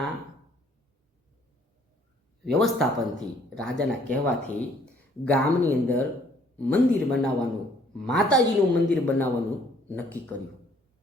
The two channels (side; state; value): both; normal; correlation 0.62